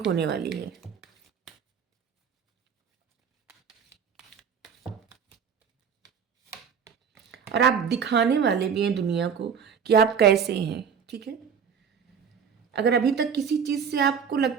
होने वाली है। और आप दिखाने वाले भी हैं दुनिया को कि आप कैसे हैं, ठीक है? अगर अभी तक किसी चीज़ से आपको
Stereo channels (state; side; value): quieter; left; 7.0 dB